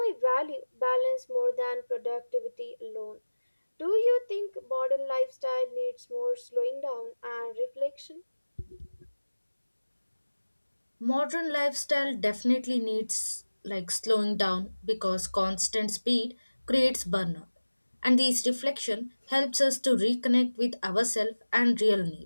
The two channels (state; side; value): inverted; both; correlation -1.00